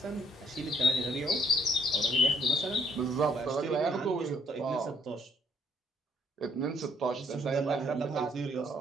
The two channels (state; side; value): normal; both; correlation 0.66